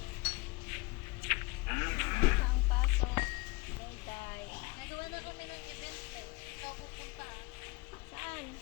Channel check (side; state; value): right; quieter; 24.9 dB